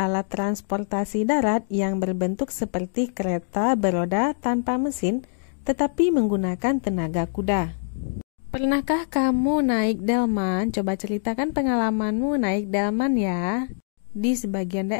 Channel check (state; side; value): silent; right; digital silence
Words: transportasi darat yang berbentuk seperti kereta beroda tanpa mesin, tetapi menggunakan tenaga kuda. Pernahkah kamu naik delman? Coba ceritakan pengalamanmu naik delman ya. Di sebagian